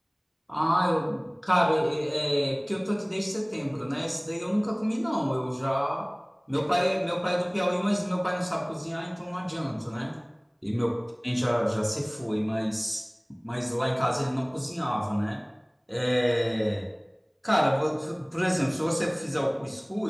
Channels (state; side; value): identical; both; correlation 1.00